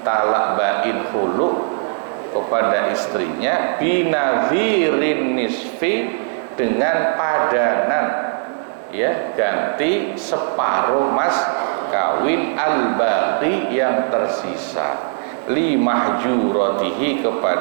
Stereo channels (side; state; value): left; silent; digital silence